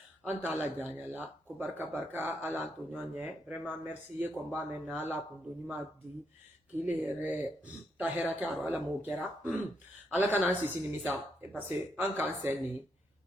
an t'a laja an ɲɛ la ko barika Ala an to ɲɔgɔn ɲɛ vraiment merci ye kɔni b'a mɛn na Ala kun do ɲuman di k'i le yɛrɛ ta hɛrɛ kɛ a rɔ Ala m'o kɛra Ala kana an sisi nimisa parce que an k'an sɛn nin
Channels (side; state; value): both; normal; correlation 0.79